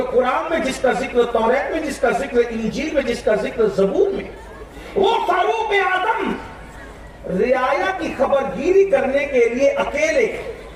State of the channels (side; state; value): both; identical; correlation 1.00